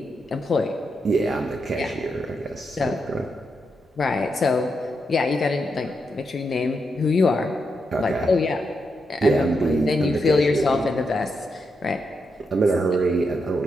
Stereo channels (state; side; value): normal; both; correlation 0.83